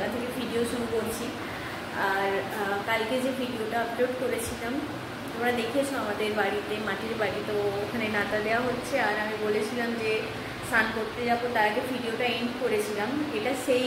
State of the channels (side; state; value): both; identical; correlation 1.00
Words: থেকে ভিডিও শুরু করছি। আর কালকে যে ভিডিওটা আপলোড করেছিলাম তোমরা দেখেছো আমাদের বাড়িতে, মাটির বাড়ি, তো ওখানে নাতা দেওয়া হচ্ছে। আর আমি বলেছিলাম যে স্নান করতে যাবো, তার আগে ভিডিওটা এন্ড করেছিলাম। এটা সেই